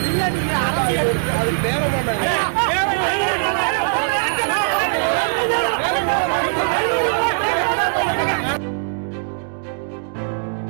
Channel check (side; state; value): left; silent; digital silence